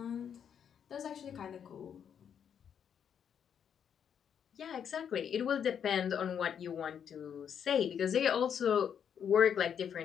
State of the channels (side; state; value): right; quieter; 8.1 dB